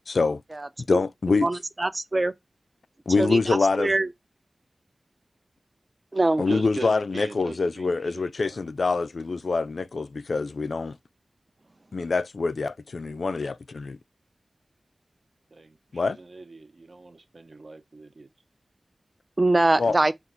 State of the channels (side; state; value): both; normal; correlation 0.95